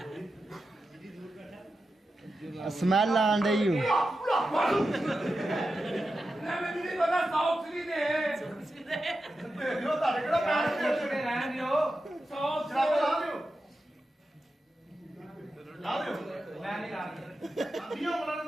ਆ ਸਮੈਲ ਆਣ ਡਈ ਓ ਨਾ ਮੈਨੂੰ ਨਹੀਂ ਪਤਾ ਸਾਊਥ ਦੀ ਦੇ ਦੇਖਿਓ ਤੁਹਾਡੇ ਕਿਹੜਾ ਪੈਰ ਤੇ ਤੇ ਰਹਿਣ ਦਿਓ ਸਾਊਥ ਜਰਾਬ ਲਾ ਦਿਓ ਲਾ ਦਿਓ ਮੈਂ ਨਹੀਂ ਕਰਦਾ ਦੀਆਂ ਉਹਨਾਂ ਨੇ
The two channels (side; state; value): both; normal; correlation 0.91